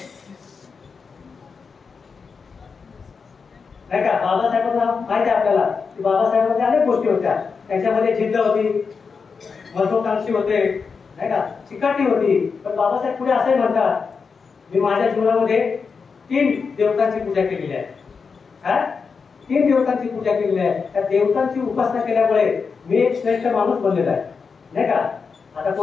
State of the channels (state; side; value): quieter; right; 5.3 dB